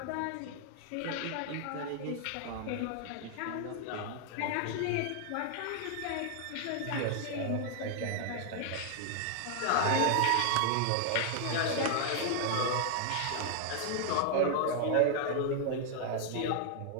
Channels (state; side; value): different; both; correlation 0.00